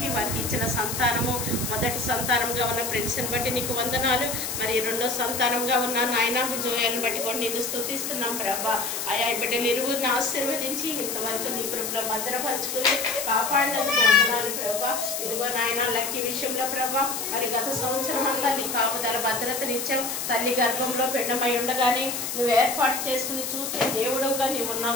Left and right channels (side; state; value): left; noise; hiss, 4 dB below the sound